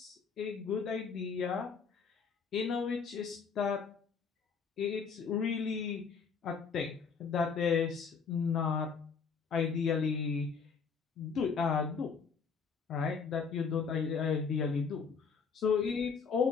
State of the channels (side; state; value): right; quieter; 5.8 dB